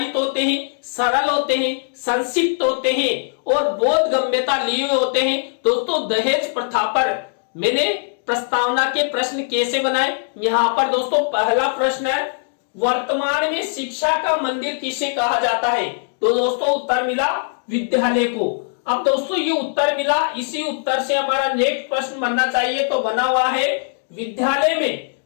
होते हैं, सरल होते हैं, संक्षिप्त होते हैं और बोधगम्यता लिए होते हैं। दोस्तों दहेज प्रथा पर मैंने प्रस्तावना के प्रश्न कैसे बनाए, यहाँ पर दोस्तों पहला प्रश्न है, वर्तमान में शिक्षा का मंदिर किसे कहा जाता है? तो दोस्तों उत्तर मिला विद्यालय को। अब दोस्तों ये उत्तर मिला, इसी उत्तर से हमारा नेक्स्ट प्रश्न बनना चाहिए, तो बना हुआ है विद्यालय में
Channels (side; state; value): right; silent; digital silence